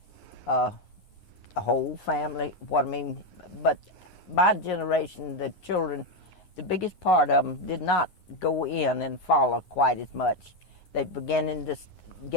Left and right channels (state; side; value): late; right; 9.7 ms